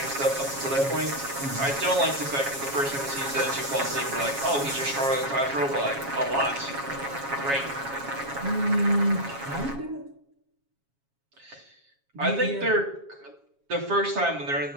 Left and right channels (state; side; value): late; left; 7.3 ms